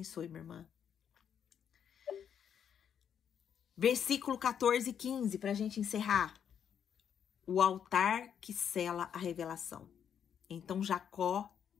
minha irmã. Versículo 14 e 15, para a gente encerrar. O altar que sela a revelação. Então Jacó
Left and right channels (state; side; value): quieter; right; 8.3 dB